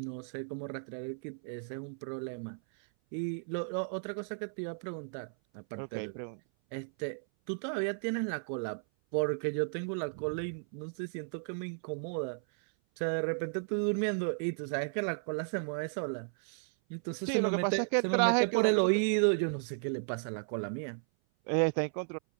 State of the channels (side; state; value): left; silent; 55 dB below the other